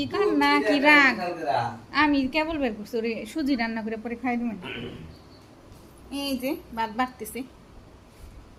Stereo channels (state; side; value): identical; both; correlation 1.00